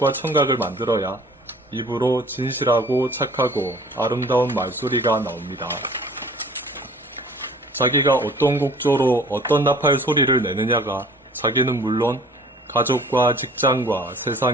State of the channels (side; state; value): both; normal; correlation 0.51